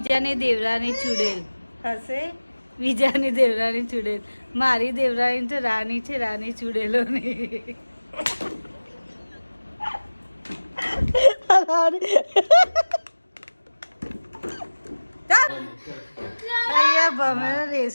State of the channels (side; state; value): both; inverted; correlation -1.00